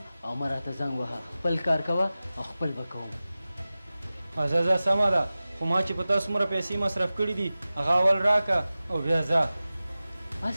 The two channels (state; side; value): inverted; both; correlation -0.96